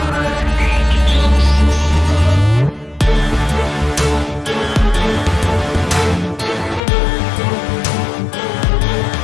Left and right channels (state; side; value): drops out; right; at 6.8 s